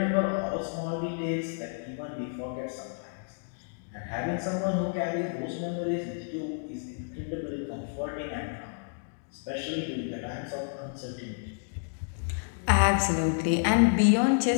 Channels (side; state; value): right; silent; digital silence